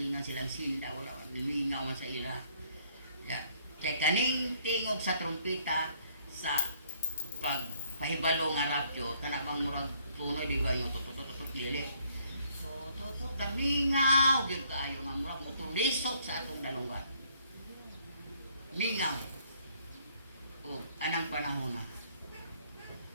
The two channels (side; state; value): both; inverted; correlation -0.65